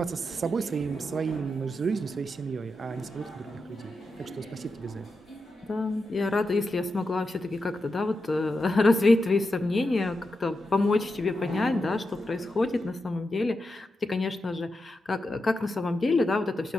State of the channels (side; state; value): both; normal; correlation 0.88